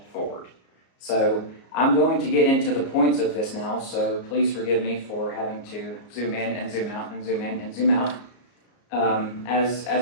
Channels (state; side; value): late; right; 34 ms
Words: forward. So I'm going to get into the points of this now, so please forgive me for having to zoom in and zoom out and zoom in and zoom out. As